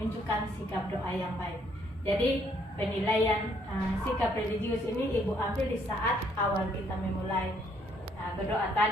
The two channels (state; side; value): normal; both; correlation 0.68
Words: sikap doa yang baik. Jadi penilaian sikap religius ini Ibu ambil di saat awal kita memulai berdoa